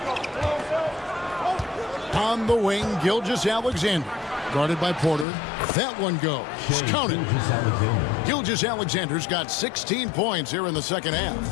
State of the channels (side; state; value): right; drops out; at 5.2 s